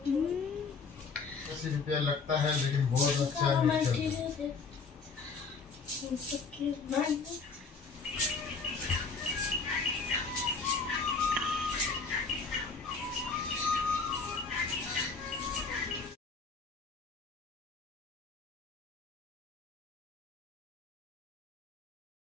80 रुपया लगता है लेकिन बहुत अच्छा है।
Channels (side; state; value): right; quieter; 4.7 dB